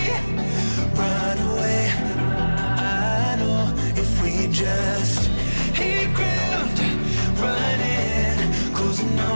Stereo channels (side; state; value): both; inverted; correlation -1.00